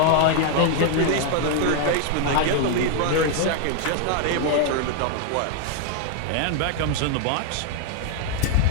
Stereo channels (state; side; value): different; both; correlation 0.00